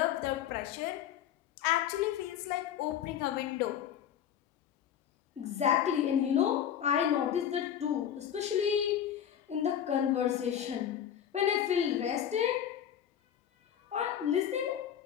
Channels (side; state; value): right; quieter; 9.6 dB